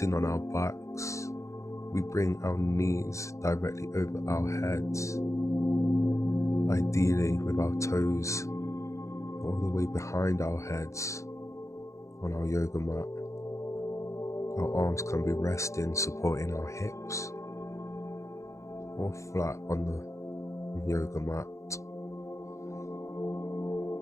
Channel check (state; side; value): late; right; 0.15 ms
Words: on our backs, we bring our knees directly over our heads, ideally with our toes all the way behind our heads on our yoga mat. Our arms can be resting, supporting our hips, or flat on the yoga mat.